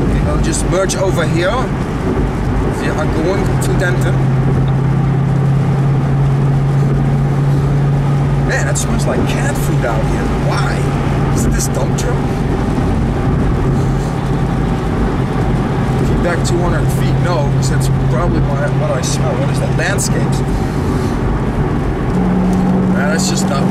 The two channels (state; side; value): identical; both; correlation 1.00